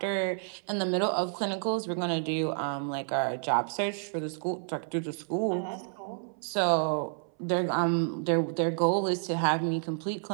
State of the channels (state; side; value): silent; left; 58 dB below the other